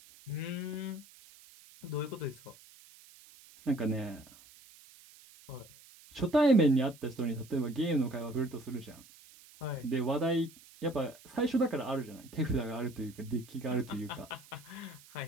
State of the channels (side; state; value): right; noise; hiss, 22 dB below the sound